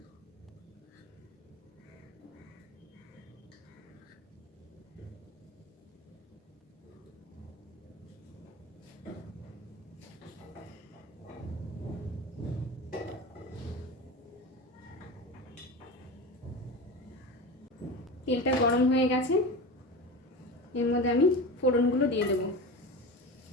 তেলটা গরম হয়ে গেছে, এর মধ্যে আমি ফোড়নগুলো দিয়ে দেবো।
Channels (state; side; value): normal; both; correlation 0.28